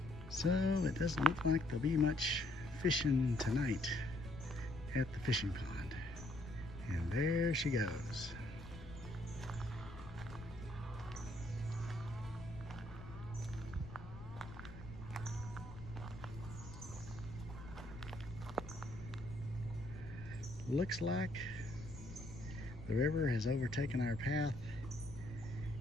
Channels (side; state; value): left; noise; rumble, 14 dB below the sound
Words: So it doesn't look like there'll be much fishing tonight at the fishing pond. And there she goes. Looks like the river has overtaken our path,